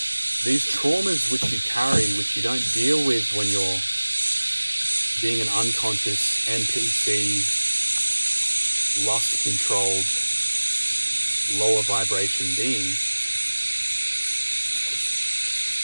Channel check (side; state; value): both; inverted; correlation -1.00